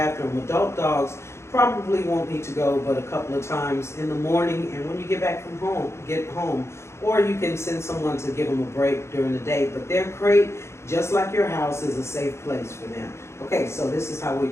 Adult dogs probably won't need to go but a couple of times in the morning and when you get home, or you can send someone to give them a break during the day. But their crate, just like your house, is a safe place for them. Okay, so this is how we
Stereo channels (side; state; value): right; late; 0.13 ms